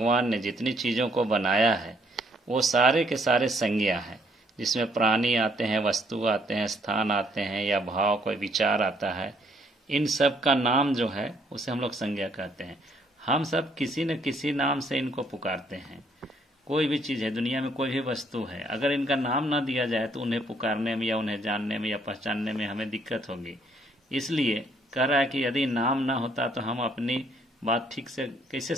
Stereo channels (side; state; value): both; normal; correlation 0.67